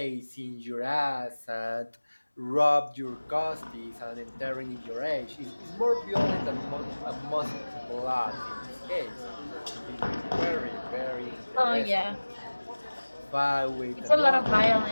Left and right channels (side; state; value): both; inverted; correlation -1.00